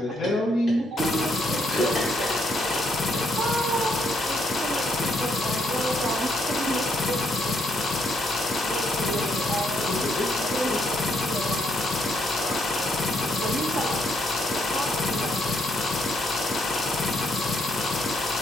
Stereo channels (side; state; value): both; normal; correlation 0.74